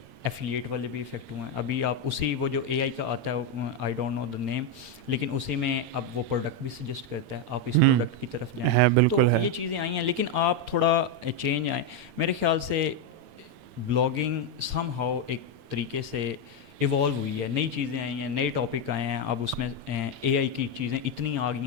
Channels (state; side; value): late; left; 8.8 ms